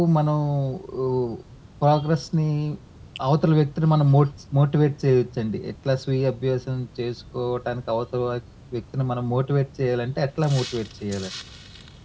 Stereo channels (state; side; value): identical; both; correlation 1.00